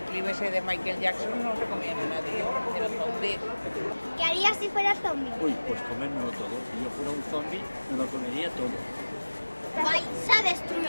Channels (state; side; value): inverted; both; correlation -1.00